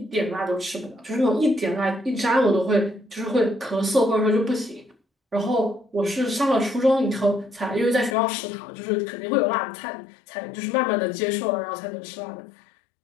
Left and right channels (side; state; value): right; drops out; at 8.2 s